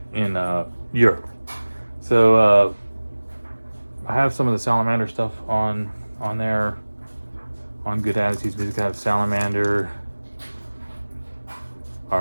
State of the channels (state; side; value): inverted; both; correlation -1.00